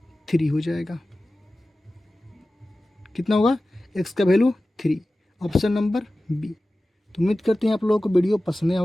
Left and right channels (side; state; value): both; normal; correlation 0.96